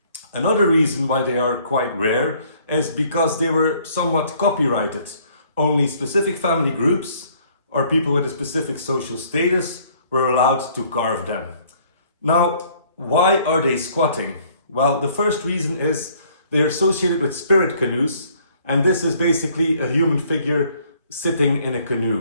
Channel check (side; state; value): both; inverted; correlation -0.61